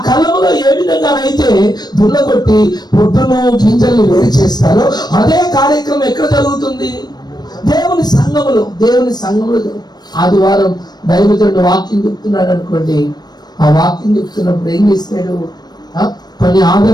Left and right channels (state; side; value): late; right; 0.20 ms